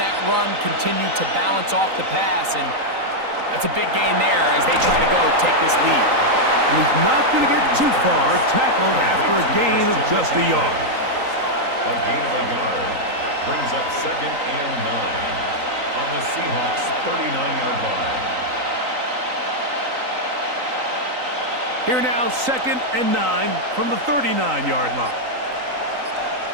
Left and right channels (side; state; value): left; late; 3.9 ms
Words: run continue to balance off the pass? And that's a big gain there as they try to go take this lead. And he's not going to get too far, tackled after a gain of just a yard. A gain of a yard brings up 2nd and 9 on the Seahawks 39-yard line. Here now, 2nd and 9 from the 39-yard line.